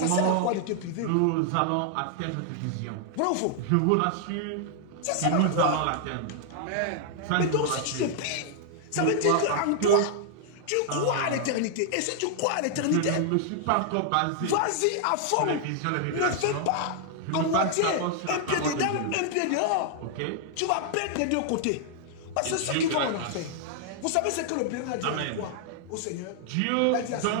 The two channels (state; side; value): different; both; correlation -0.01